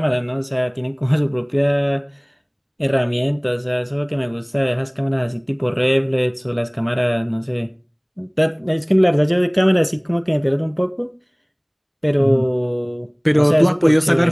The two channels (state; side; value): identical; both; correlation 1.00